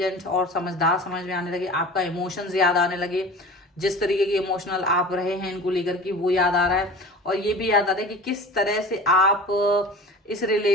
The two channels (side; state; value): both; normal; correlation 0.38